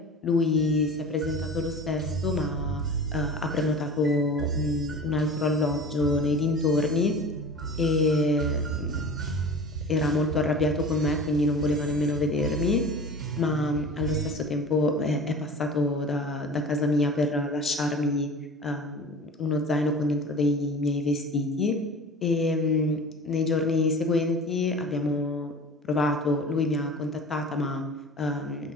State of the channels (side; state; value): both; normal; correlation 0.38